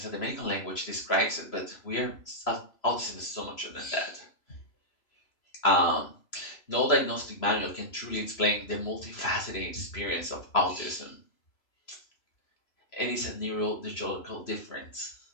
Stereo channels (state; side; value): late; right; 3.0 ms